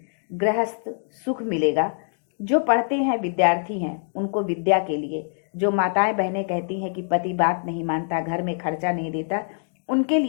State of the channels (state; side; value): silent; right; 58 dB below the other